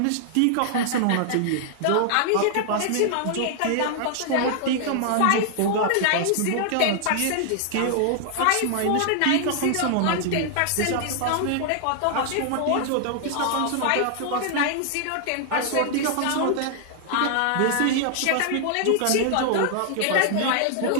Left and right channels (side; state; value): both; different; correlation -0.01